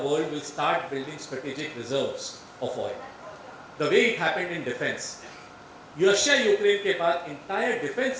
will start building strategic reserves of oil. The way it happened in defense. Russia-Ukraine के बाद entire defense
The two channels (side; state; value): both; identical; correlation 1.00